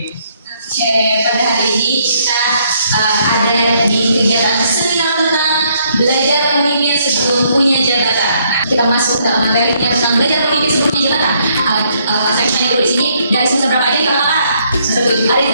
Oke, pada hari ini kita ada di kegiatan seminar tentang belajar pemimpin sebelum punya jabatan. Nah, kita masuk dalam materinya tentang belajar pemimpin sebelum punya jabatan. Saya tanya dulu di sini dari semester berapa aja nih kakak-kakak? Semester 7. Ada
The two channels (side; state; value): both; inverted; correlation -0.70